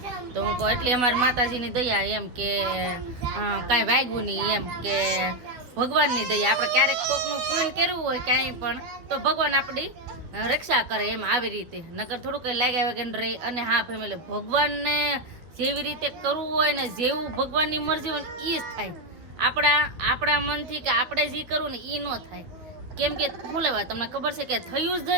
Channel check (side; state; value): left; late; 12 ms